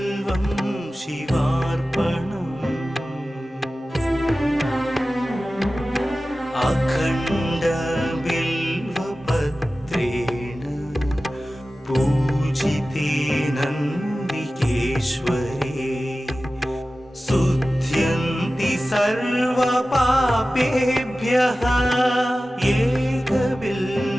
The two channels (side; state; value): both; normal; correlation 0.95